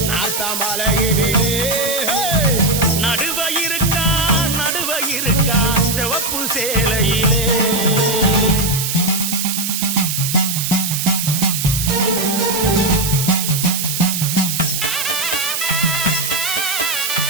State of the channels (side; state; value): right; noise; hiss, 2 dB below the sound